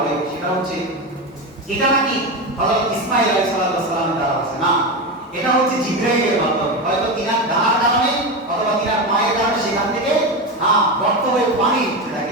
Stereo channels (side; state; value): both; normal; correlation 0.17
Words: সেটা হচ্ছে এটা নাকি হযরত ইসমাঈল আলাইহিস সালামের দ্বারা আছে না, এটা হচ্ছে জিবরাইলের মাধ্যমে। হয়তো তিনার ডানার কারণে অথবা তিনার মায়ের কারণে সেখান থেকে গর্ত হয়ে পানি উঠতে থাকে,